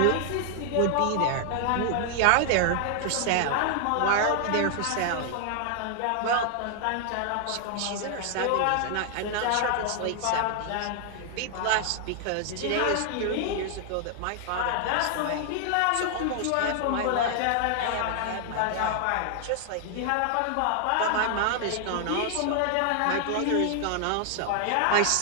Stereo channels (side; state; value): both; different; correlation 0.00